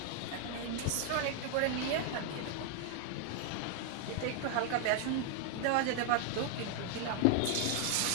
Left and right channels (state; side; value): different; both; correlation 0.01